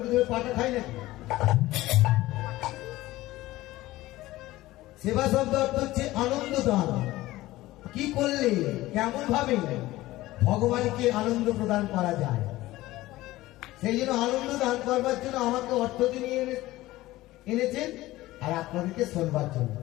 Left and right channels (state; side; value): quieter; right; 17.4 dB